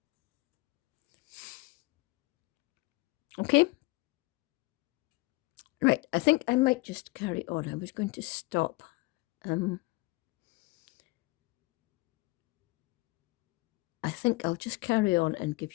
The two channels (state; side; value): quieter; right; 23.3 dB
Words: Okay? Right, I think I might just carry on. I was going to stop. I think I'll just carry on and